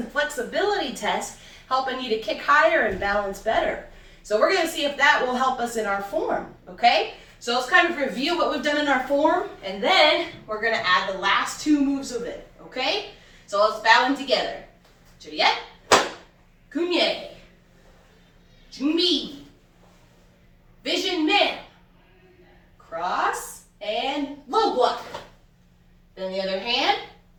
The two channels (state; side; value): identical; both; correlation 1.00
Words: flexibility test, helping you to kick higher and balance better. So we're going to see if that will help us in our form, okay? So let's kind of review what we've done in our form, and then we're gonna add the last two moves of it, okay? So let's bow them together. Juliet, Kunye, Junbi, Vision Man, cross, and low block. Then the other hand,